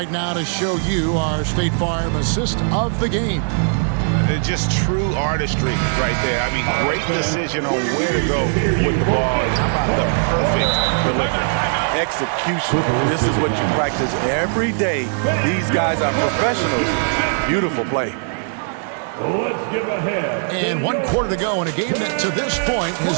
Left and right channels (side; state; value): left; silent; 66 dB below the other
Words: now to show you our State Farm assist of the game. Just true artistry right there. I mean, great decision on where to go with the ball. And how about the perfect delivery? Execution. This is what you practice every day. These guys are professionals. Beautiful play. Let's give a head. And 1 quarter to go in a game that to this point